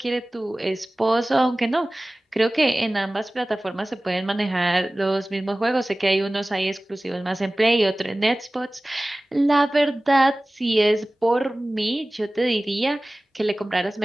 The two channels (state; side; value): normal; both; correlation 0.98